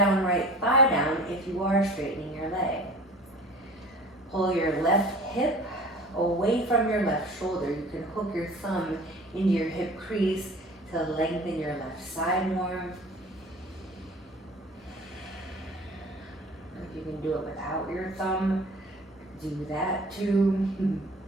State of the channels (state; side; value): normal; both; correlation 0.44